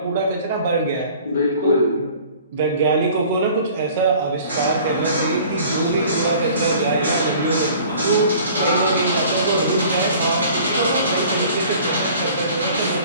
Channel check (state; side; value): inverted; both; correlation -0.49